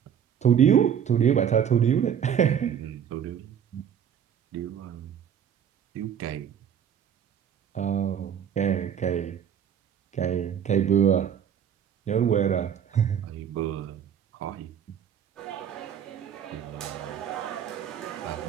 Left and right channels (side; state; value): left; quieter; 8.7 dB